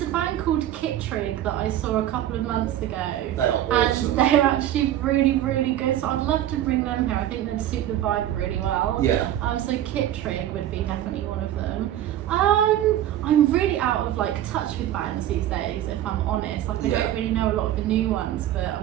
a band called Kittrig that I saw a couple of months ago. They are awesome. And they're actually really, really good. So I'd love to bring them here. I think they'd suit the vibe really well. Yeah. So Kittrig would be definitely one of them. I'm really out of touch with bands these days, if I'm honest. I don't really know a lot of the new ones, but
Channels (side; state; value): left; quieter; 12.3 dB